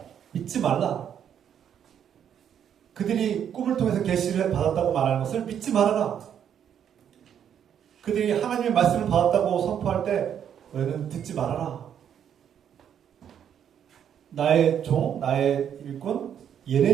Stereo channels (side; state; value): left; quieter; 9.0 dB